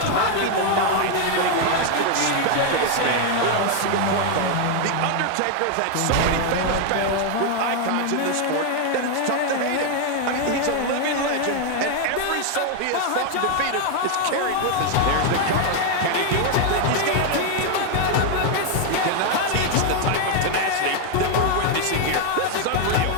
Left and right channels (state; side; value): different; both; correlation 0.01